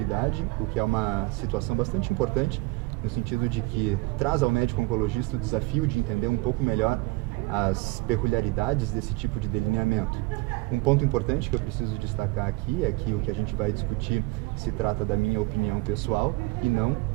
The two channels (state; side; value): quieter; left; 22.6 dB